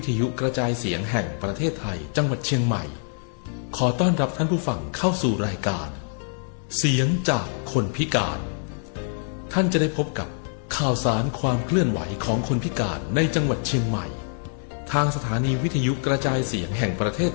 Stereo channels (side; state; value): right; silent; digital silence